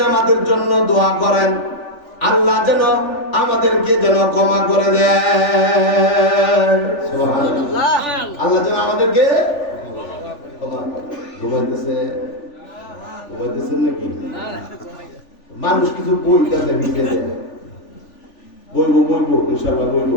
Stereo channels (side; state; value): right; late; 3.4 ms